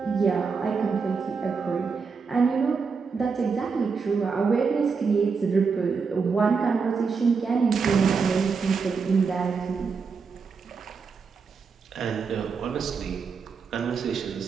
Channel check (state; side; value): quieter; left; 5.3 dB